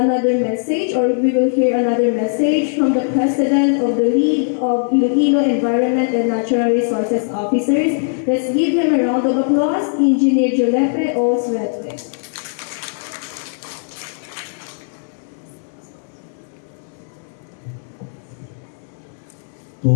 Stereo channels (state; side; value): silent; right; digital silence